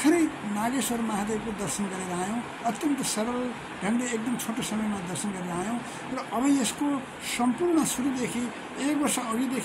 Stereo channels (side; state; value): both; identical; correlation 1.00